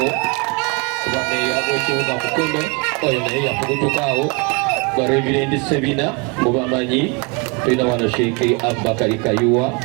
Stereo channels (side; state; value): left; quieter; 31.0 dB